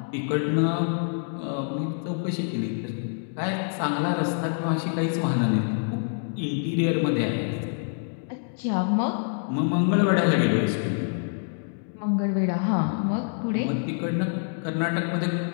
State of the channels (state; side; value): silent; right; 61 dB below the other